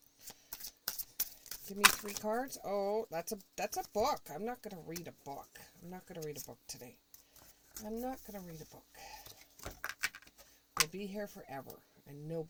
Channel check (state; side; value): identical; both; correlation 1.00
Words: Give me 3 cards. Oh, that's a book. I'm not going to read a book. I'm not going to read a book today. I'm not going to read a book. We'll be here forever, and